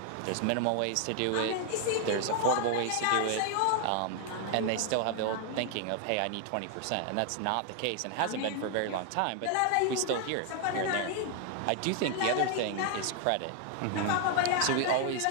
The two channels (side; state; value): both; different; correlation 0.00